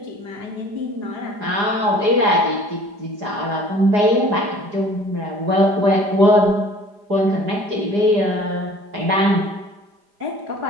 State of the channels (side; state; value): left; late; 4.9 ms